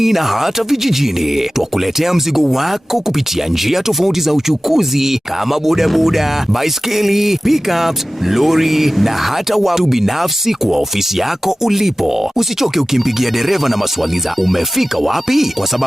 na hata vijijini. Twakuletea mzigo wako kupitia njia tofauti za uchukuzi kama bodaboda, baiskeli, pickups, lori na hata watu binafsi kwa ofisi yako ulipo. Usichoke ukimpigia dereva na maswali za umefika wapi, kwa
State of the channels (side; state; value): both; normal; correlation 0.96